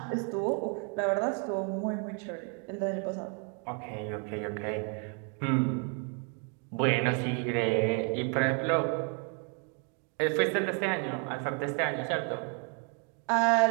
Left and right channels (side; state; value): left; quieter; 39.4 dB